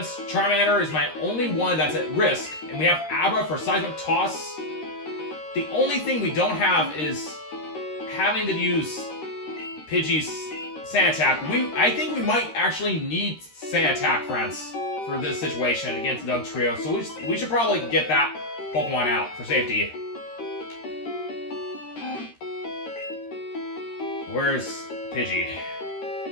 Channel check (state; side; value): late; right; 13 ms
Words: Charmander is my only one that's at risk, and we have Abra for seismic toss. The only thing we don't have is having to use Pidgey's Sand Attack. I think we might actually need Sand Attack, friends, for this situation against Dugtrio. So we should probably get that Pokemon out for safety. Where's Pidgey?